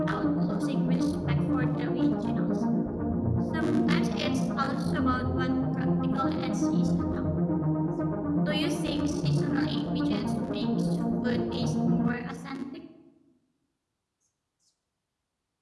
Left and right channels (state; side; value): identical; both; correlation 1.00